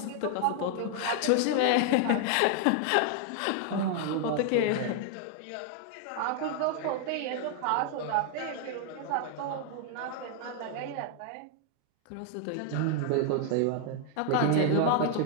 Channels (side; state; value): both; different; correlation 0.00